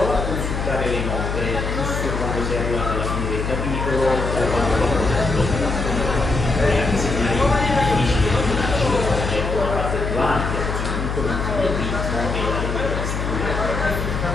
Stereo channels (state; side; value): noise; left; hum, 2 dB below the sound